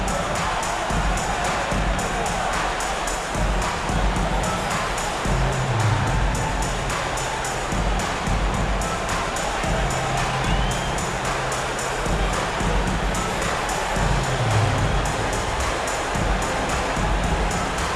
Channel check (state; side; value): identical; both; correlation 1.00